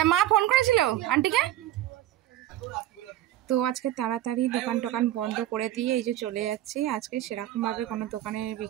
মা ফোন করেছিল আন্টিকে। তো আজকে তাড়াতাড়ি দোকান টোকান বন্ধ করে দিয়ে এই যে চলে যাচ্ছি। আজকে সেরকমভাবে কোনো দোকানের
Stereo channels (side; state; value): left; quieter; 13.7 dB